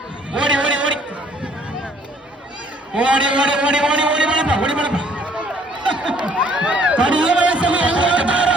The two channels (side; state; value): both; normal; correlation 0.60